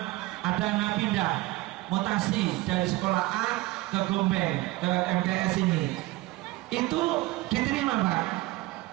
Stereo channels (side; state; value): left; quieter; 19.6 dB